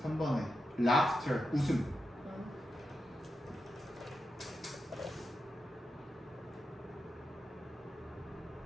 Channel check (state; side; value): normal; both; correlation 0.88